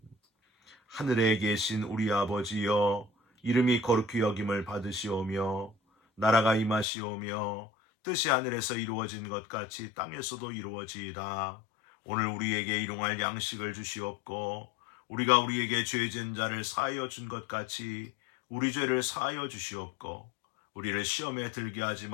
하늘에 계신 우리 아버지여, 이름이 거룩히 여김을 받으시오며 나라가 임하시오며 뜻이 하늘에서 이루어진 것 같이 땅에서도 이루어지이다. 오늘 우리에게 일용할 양식을 주시옵고 우리가 우리에게 죄진 자를 사하여 준 것 같이 우리 죄를 사하여 주시옵고 우리를 시험에 들게 하지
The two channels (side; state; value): right; drops out; at 6.9 s